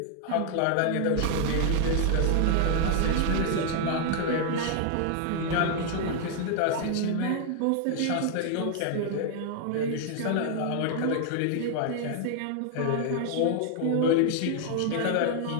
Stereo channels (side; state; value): both; different; correlation 0.00